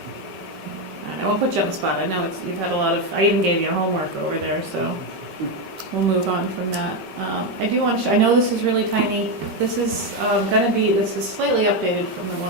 I won't put you on the spot. I know you've had a lot of, I even gave you homework over there, so. we'll move on from that. I do want to, I know this is really tiny. This is this is slightly updated from the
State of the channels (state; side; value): late; left; 5.2 ms